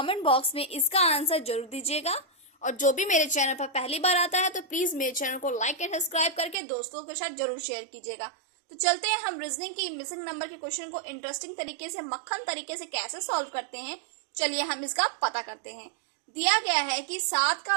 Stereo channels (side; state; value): left; drops out; at 6.6 s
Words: बॉक्स में इसका आंसर जरूर दीजिएगा। और जो भी मेरे चैनल पर पहली बार आता है तो प्लीज मेरे चैनल को लाइक एंड सब्सक्राइब करके दोस्तों के साथ जरूर शेयर कीजिएगा। तो चलते हैं हम रीजनिंग की मिसिंग नंबर के क्वेश्चन को इंटरेस्टिंग तरीके से, मक्खन तरीके से कैसे सॉल्व करते हैं। चलिए हम इसका पता करते हैं। दिया गया है कि 7